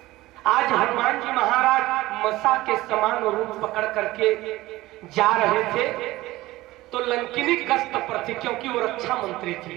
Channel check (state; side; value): quieter; left; 17.9 dB